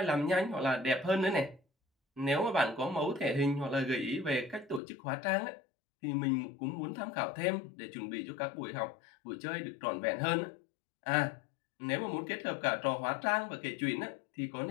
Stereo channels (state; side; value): drops out; right; at 4.8 s